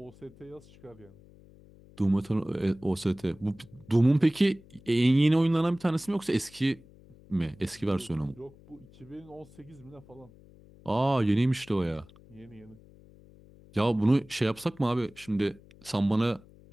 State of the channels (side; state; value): left; noise; hum, 24 dB below the sound